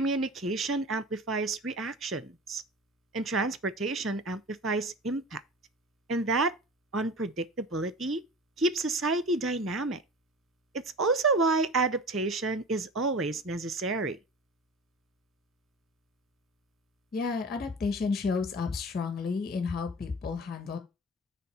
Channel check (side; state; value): both; normal; correlation 0.36